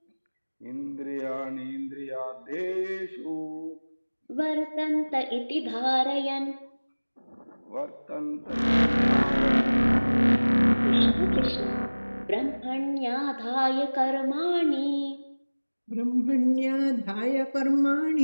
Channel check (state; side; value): inverted; both; correlation -1.00